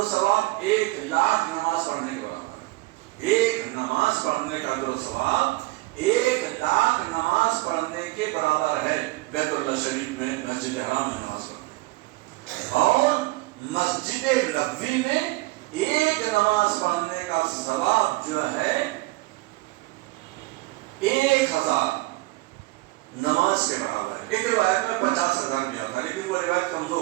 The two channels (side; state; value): left; quieter; 21.4 dB